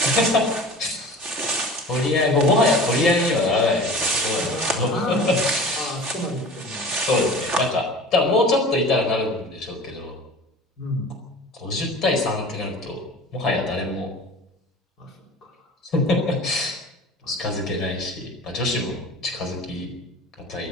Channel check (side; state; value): both; normal; correlation 0.39